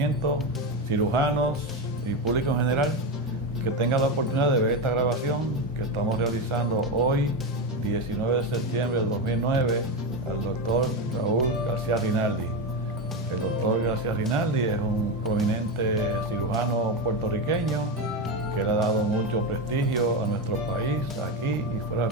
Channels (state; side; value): normal; both; correlation 0.14